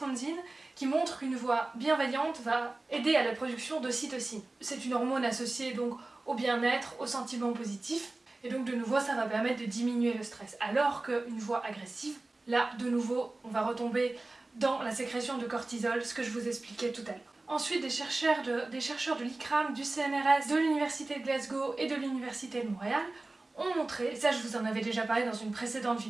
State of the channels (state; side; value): quieter; left; 3.1 dB